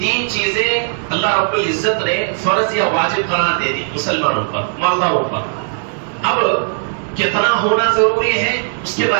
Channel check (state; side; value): silent; left; digital silence